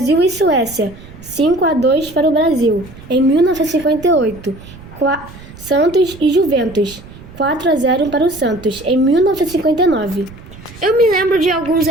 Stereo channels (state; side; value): noise; right; rumble, 18 dB below the sound